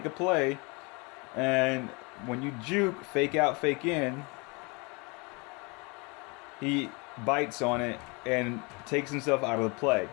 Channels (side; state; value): right; quieter; 29.4 dB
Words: a play, and when you juke, fake out, fake in, he bites on it and takes himself out of the play.